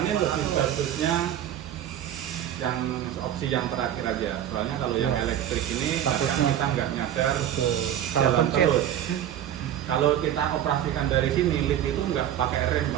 lebih bagusnya yang opsi yang terakhir aja. Soalnya kalau yang elektrik ini kadang kita nggak nyadar jalan terus. Kalau kita operasikan dari sini, lift itu nggak pakai rem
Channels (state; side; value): quieter; left; 10.8 dB